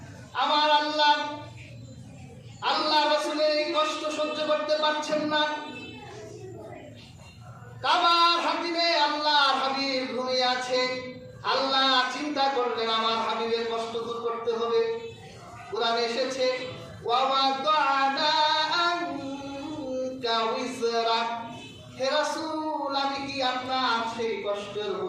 আমার আল্লাহ রাসূলের এই কষ্ট সহ্য করতে পারছেন না। কাবার হাতিমে আল্লাহর হাবিব ঘুমিয়ে আছে। আল্লাহ চিন্তা করলেন আমার হাবিবের কষ্ট দূর করতে হবে। কোরআনে এসেছে, ওয়াওয়াদানা আনকা উযরাক, হে রাসূল, আমি কি আপনার সেই কষ্টের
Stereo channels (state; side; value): identical; both; correlation 1.00